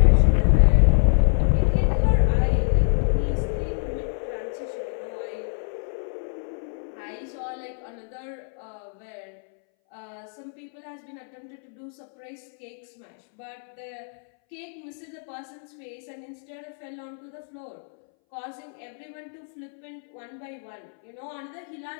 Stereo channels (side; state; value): right; silent; 61 dB below the other